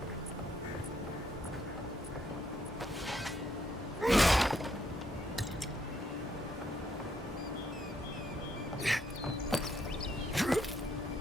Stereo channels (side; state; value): both; normal; correlation 0.73